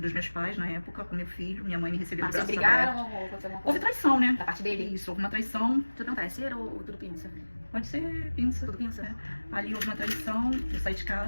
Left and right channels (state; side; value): inverted; both; correlation -1.00